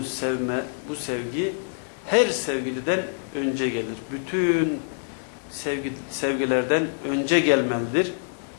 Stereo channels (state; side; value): silent; right; 57 dB below the other